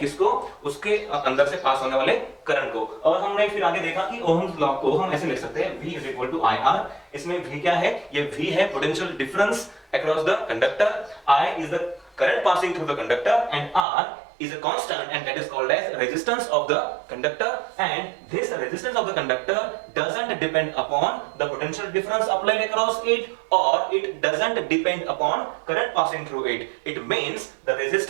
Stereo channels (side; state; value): left; drops out; at 13.9 s